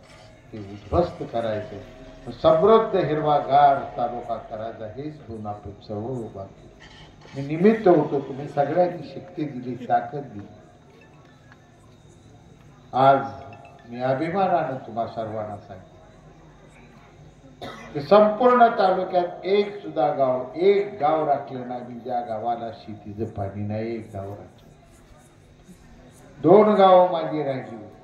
ते उद्ध्वस्त करायचं, समृद्ध हिरवागार तालुका करायचा, हेच दोन आपण चळवळ उभा केली. मी निमित्त होतो, तुम्ही सगळ्यांनी शक्ती दिली, ताकद दिली. आज मी अभिमानानं तुम्हा सर्वांना सांगतो की संपूर्ण तालुक्यात एक सुद्धा गाव, एक गाव राखलं नाही ज्या गावाला शेतीचं पाणी नाही. एक गाव राखलं. 2 गावं माझी राहिली,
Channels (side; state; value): both; identical; correlation 1.00